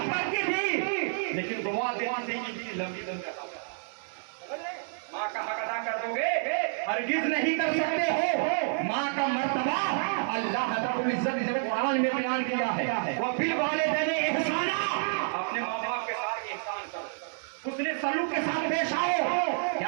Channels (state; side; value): silent; left; digital silence